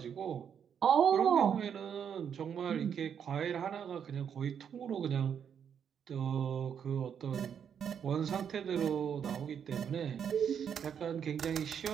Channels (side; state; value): left; quieter; 7.9 dB